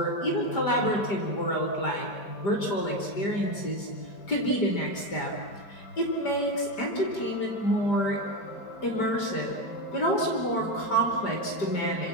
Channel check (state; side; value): late; right; 5.0 ms